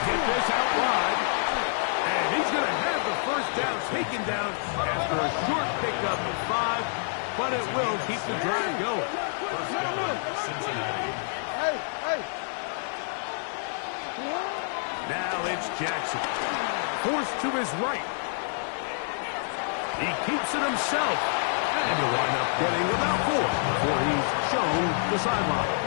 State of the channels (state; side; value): silent; right; 58 dB below the other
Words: get this out wide, and he's going to have the first down taken down after a short pickup of 5, but it will keep the drive going. First down, Cincinnati. Now it's Jackson. Forced to his right. He keeps it himself. And he'll wind up getting about 4 before he's shown the sideline.